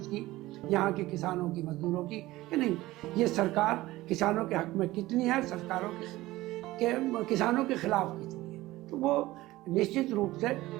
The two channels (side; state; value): left; quieter; 17.9 dB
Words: यहाँ के किसानों की, मजदूरों की, कि नहीं ये सरकार किसानों के हक में कितनी है, सरकारों के किसानों के खिलाफ कितनी है। तो वो निश्चित रूप से